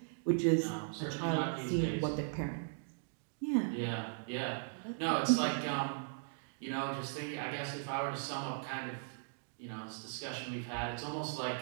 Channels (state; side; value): silent; left; digital silence